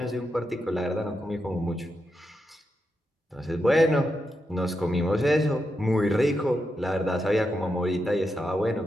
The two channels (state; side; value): normal; both; correlation 0.86